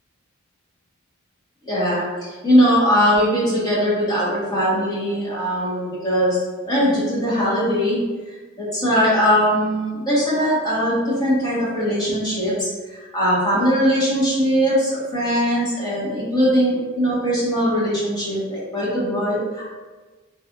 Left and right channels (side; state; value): both; normal; correlation 0.34